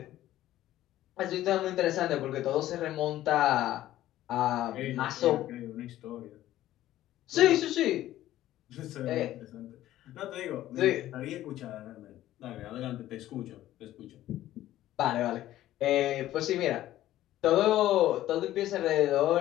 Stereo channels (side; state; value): right; quieter; 14.0 dB